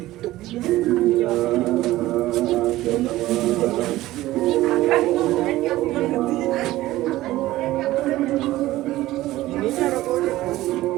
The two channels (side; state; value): left; quieter; 16.4 dB